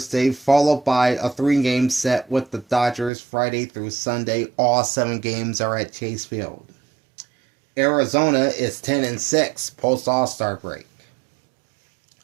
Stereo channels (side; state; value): left; drops out; at 3.1 s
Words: followed by a 3-game set with the Dodgers Friday through Sunday. All 7 games are at Chase Field. Arizona is 10-6 post All-Star break.